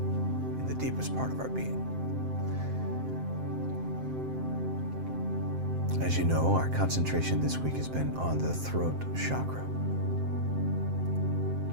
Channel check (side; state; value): left; late; 7.6 ms